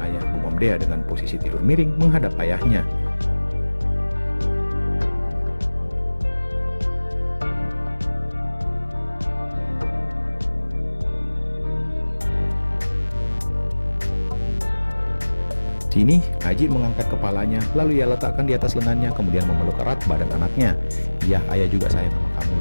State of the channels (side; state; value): both; inverted; correlation -1.00